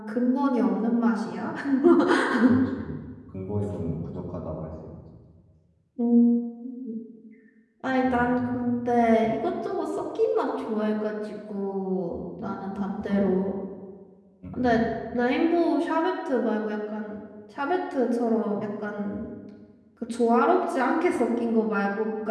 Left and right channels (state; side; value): identical; both; correlation 1.00